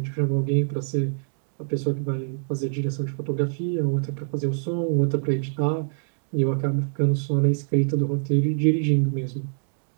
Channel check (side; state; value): left; silent; digital silence